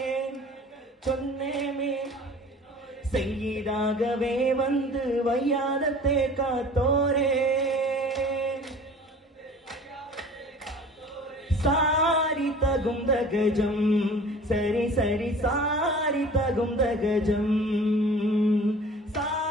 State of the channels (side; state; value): both; normal; correlation 0.44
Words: ചൊന്നേ സയ്യിദാകവേ വന്ന് വയ്യാദത്തെ കാത്തോരേ സാരി തകുന്തഗജം സരി സരി സാരി തകുന്തഗജം